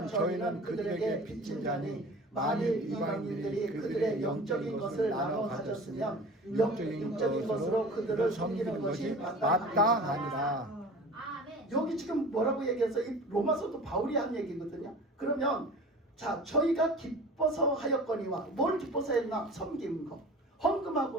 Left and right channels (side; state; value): both; normal; correlation 0.39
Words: 저희는 그들에게 빚진 자니 만일 이방인들이 그들의 영적인 것을 나눠 가졌으면 육적인 것으로 그들을 섬기는 것이 마땅하니라. 아멘. 여기 지금 뭐라고 얘기해서 이 로마서도 바울이 한 얘기거든요. 그러면 자, 저희가 기뻐서 하였거니와 뭘 기뻐서 했나? 섬기는 거.